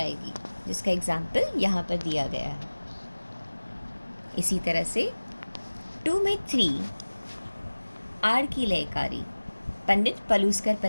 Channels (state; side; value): inverted; both; correlation -1.00